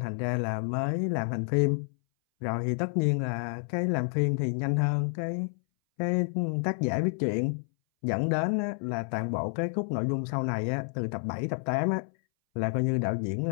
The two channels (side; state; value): right; silent; 58 dB below the other